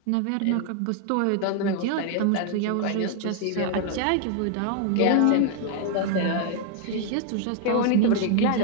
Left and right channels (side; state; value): both; different; correlation 0.00